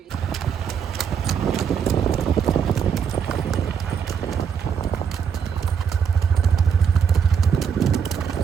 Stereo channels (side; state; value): left; quieter; 7.2 dB